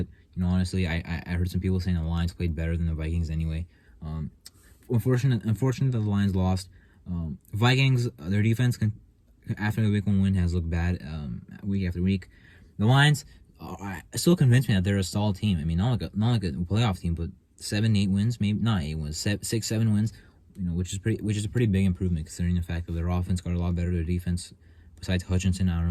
honestly, I heard some people saying the Lions played better than the Vikings anyway. Unfortunate that the Lions lost. Vikings, their defense after the week 1 win has looked bad week after week. The Lions still convinced me that they're a solid team. I mean, not like a playoff team, but 7-8 wins, maybe not 8 wins, 6-7 wins, which is a pretty big improvement considering the fact that their offense got a lot better. Their defense, besides Hutchinson, I don't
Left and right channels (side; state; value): both; identical; correlation 1.00